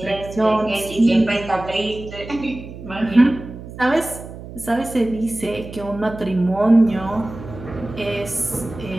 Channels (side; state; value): right; noise; hum, 13 dB below the sound